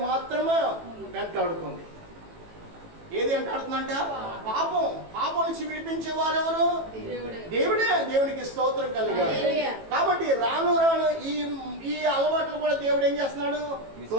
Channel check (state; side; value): late; left; 18 ms